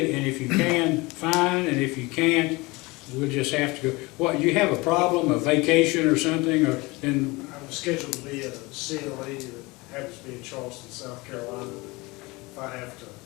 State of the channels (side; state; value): right; quieter; 23.7 dB